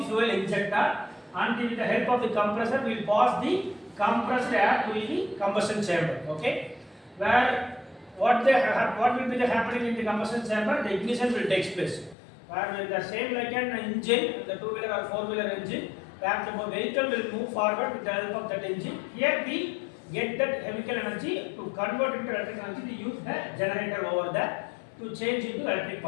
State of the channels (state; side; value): drops out; right; at 12.2 s